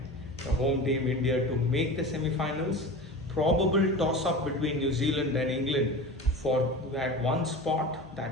the home team India to make the semi-finals. Probable toss-up between New Zealand and England for that one spot,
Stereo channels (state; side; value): normal; both; correlation 0.32